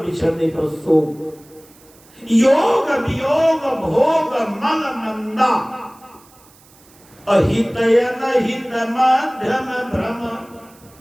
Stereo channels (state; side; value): noise; right; hiss, 27 dB below the sound